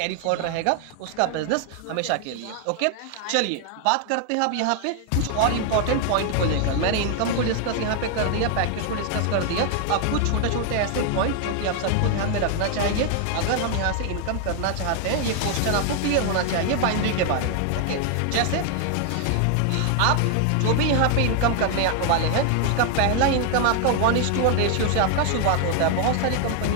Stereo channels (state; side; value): different; both; correlation 0.00